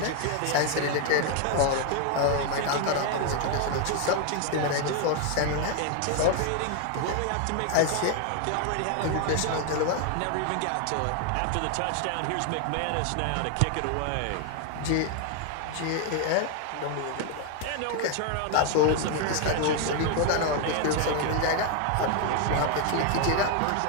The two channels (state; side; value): different; both; correlation 0.01